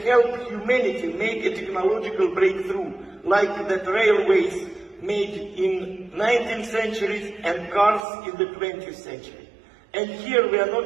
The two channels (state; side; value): drops out; left; at 8.0 s